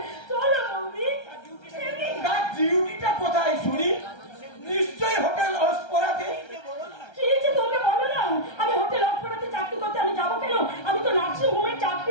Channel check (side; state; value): right; late; 1.3 ms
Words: চলো বৌদি। তার ডিউটিটা কোথায় শুনি? নিশ্চয়ই হোটেল লস্করাতে। কি যে তোমরা বলো না, আমি হোটেল অফারাতে চাকরি করতে আমি যাবো কেন? আমি তো নার্সিং হোমের